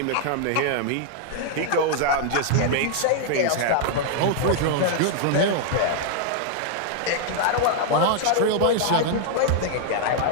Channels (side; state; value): both; different; correlation 0.00